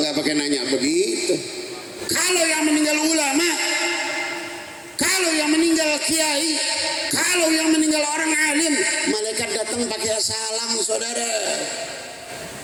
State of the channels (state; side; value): identical; both; correlation 1.00